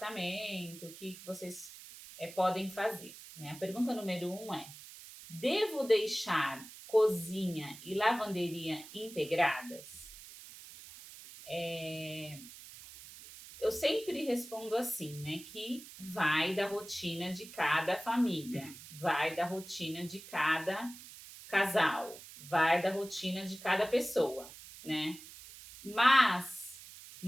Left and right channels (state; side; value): noise; right; hiss, 16 dB below the sound